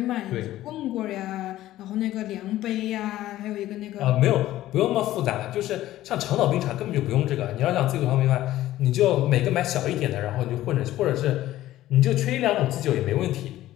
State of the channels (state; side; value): quieter; right; 14.6 dB